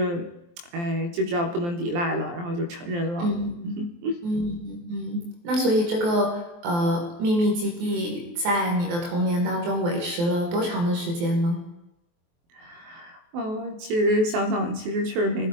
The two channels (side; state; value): left; late; 23 ms